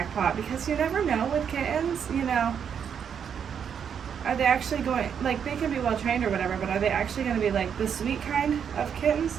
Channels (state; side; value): quieter; left; 7.7 dB